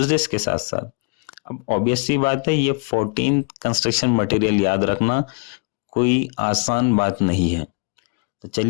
के साथ साथ। अब ऑब्वियस सी बात है, ये 14 कंस्ट्रक्शन मटेरियल याद रखना कोई आसान बात नहीं है। तो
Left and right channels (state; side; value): quieter; right; 33.8 dB